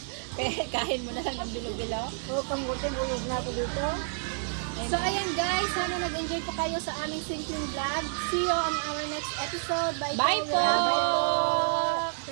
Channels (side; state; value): left; silent; digital silence